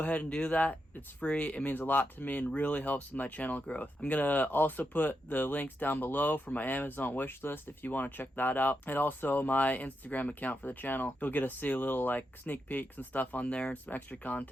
and do that. It's free. It means a lot to me and really helps with my channel growth. I'm going to also put the links down below for my Amazon wish list if you want to check that out. And also my Instagram account for the channel. You'll get to see a little like sneak peeks and stuff on there and some extra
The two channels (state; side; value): normal; both; correlation 0.85